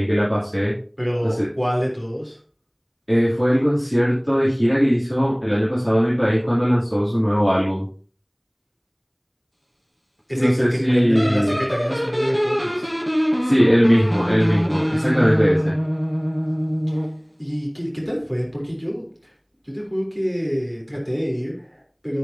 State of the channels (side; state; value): both; identical; correlation 1.00